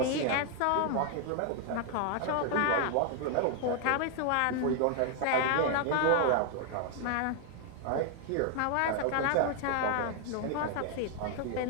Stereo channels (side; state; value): both; different; correlation 0.00